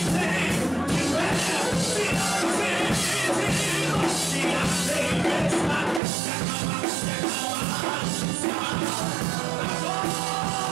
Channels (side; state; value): left; drops out; at 6.0 s